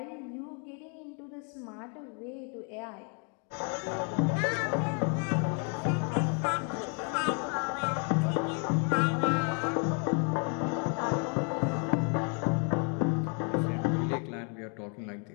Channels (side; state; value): right; quieter; 39.0 dB